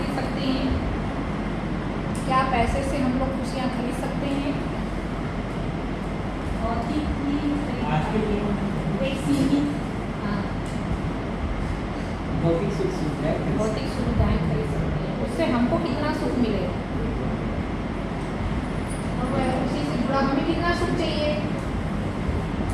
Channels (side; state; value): both; identical; correlation 1.00